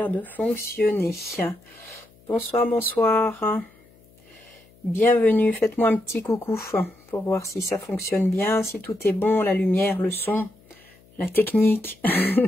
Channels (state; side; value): noise; left; hum, 29 dB below the sound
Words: de fonctionner. Bonsoir, bonsoir. Bienvenue, faites-moi un petit coucou pour voir si ça fonctionne bien, si tout est bon, la lumière, le son, la technique.